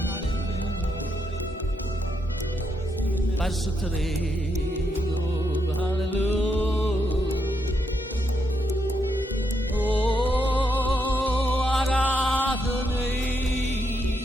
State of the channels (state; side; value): normal; both; correlation 0.79